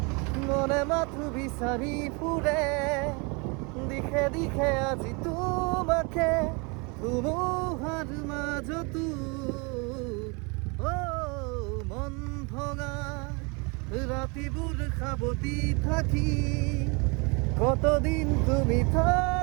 মনে মাথো বিচাৰি ফুৰে দিশে আজি তোমাকে ধুমুহাৰ মাজতো মন ভঙা ৰাতিবোৰ সাৱতি থাকি কতদিন তুমি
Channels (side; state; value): left; quieter; 30.7 dB